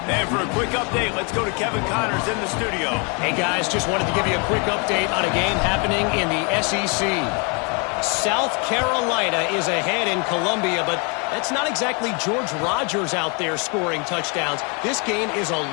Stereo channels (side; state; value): right; quieter; 34.0 dB